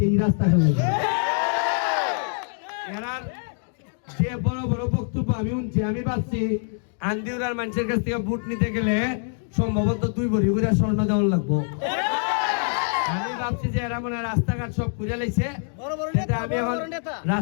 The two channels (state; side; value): silent; right; 62 dB below the other